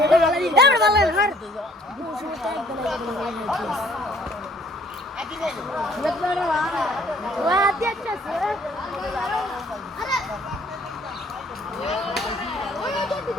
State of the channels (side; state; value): both; normal; correlation 0.58